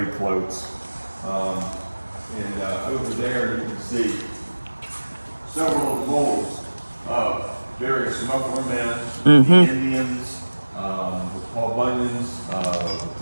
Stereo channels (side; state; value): both; inverted; correlation -1.00